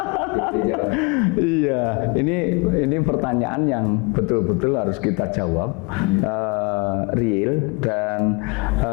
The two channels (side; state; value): right; quieter; 28.7 dB